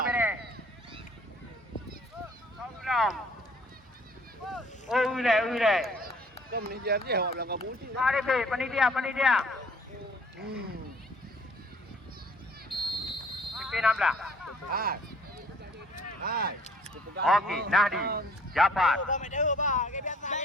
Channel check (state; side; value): normal; both; correlation 0.57